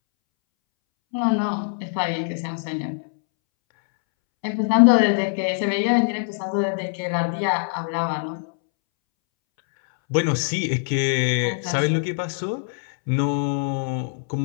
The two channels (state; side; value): silent; right; 63 dB below the other